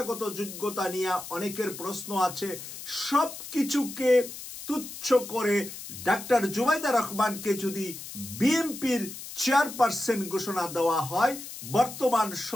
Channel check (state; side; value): noise; left; hiss, 11 dB below the sound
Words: যোগ্যতা নিয়ে অনেকের প্রশ্ন আছে। সব কিছুকে তুচ্ছ করে ডাক্তার জুবাইদা রহমানকে যদি বিএনপির চেয়ারপারসন ঘোষণা দেওয়া হয়, বর্তমান